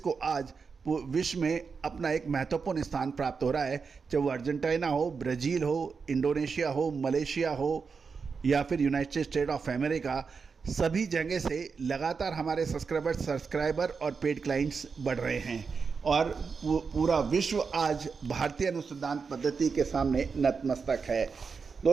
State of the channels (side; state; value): left; quieter; 5.3 dB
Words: आज विश्व में अपना एक महत्वपूर्ण स्थान प्राप्त हो रहा है। चाहे वो अर्जेंटीना हो, ब्राज़ील हो, इंडोनेशिया हो, मलेशिया हो या फिर यूनाइटेड स्टेट ऑफ अमेरिका, सभी जगह से लगातार हमारे सब्सक्राइबर और पेड क्लाइंट्स बढ़ रहे हैं और पूरा विश्व आज भारतीय अनुसंधान पद्धति के सामने नतमस्तक है।